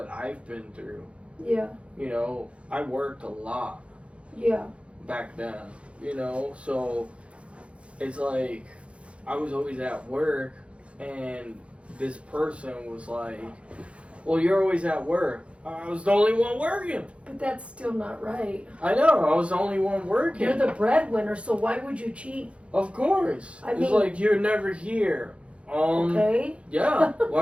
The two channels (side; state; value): left; late; 0.061 ms